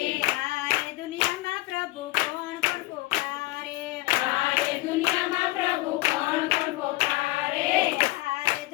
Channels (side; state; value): right; quieter; 20.0 dB